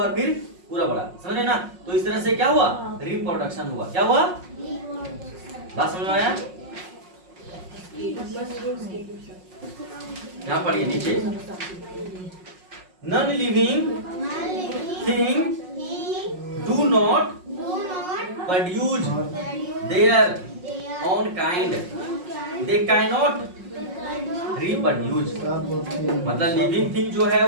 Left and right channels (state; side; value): late; left; 5.5 ms